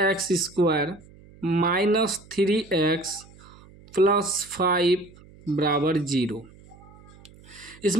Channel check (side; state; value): right; noise; hum, 24 dB below the sound